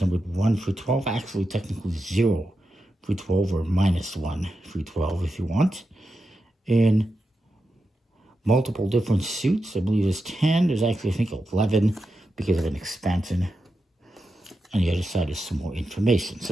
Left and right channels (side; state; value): both; normal; correlation 0.89